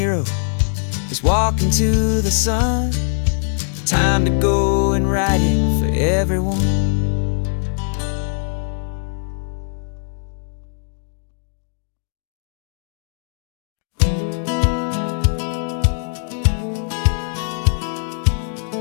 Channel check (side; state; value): right; silent; digital silence